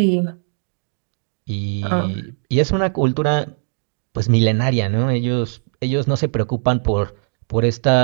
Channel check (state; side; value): silent; left; 56 dB below the other